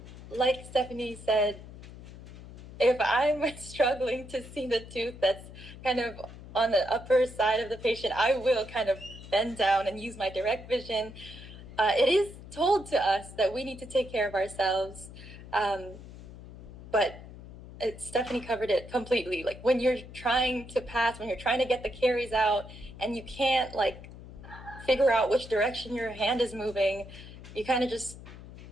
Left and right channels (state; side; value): noise; left; hum, 15 dB below the sound